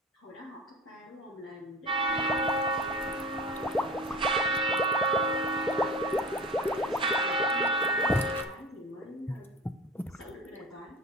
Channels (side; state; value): both; normal; correlation 0.35